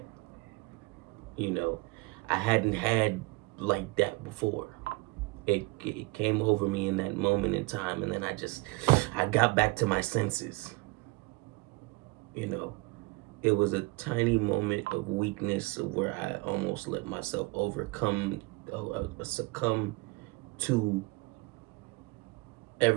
you know, I hadn't had like that before. It came over me in that moment in time, and then I got back to my senses. You know, it was a tiny moment of weakness where I almost let myself succumb to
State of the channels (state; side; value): quieter; left; 24.5 dB